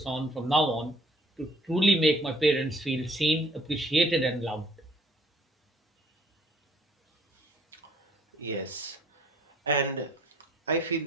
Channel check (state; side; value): normal; both; correlation 0.60